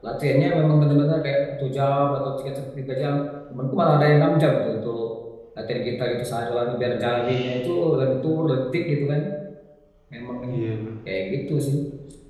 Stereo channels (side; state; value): both; identical; correlation 1.00